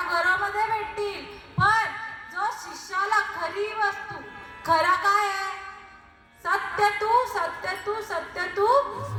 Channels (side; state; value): both; identical; correlation 1.00